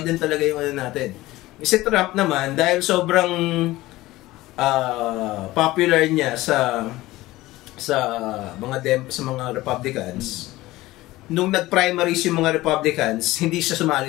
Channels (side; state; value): right; quieter; 18.0 dB